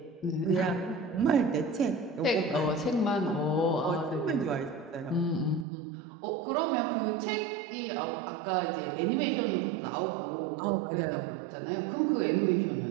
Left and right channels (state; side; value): drops out; left; at 5.7 s